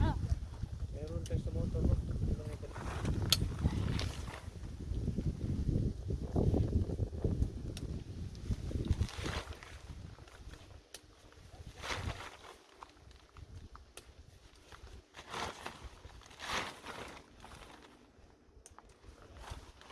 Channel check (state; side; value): identical; both; correlation 1.00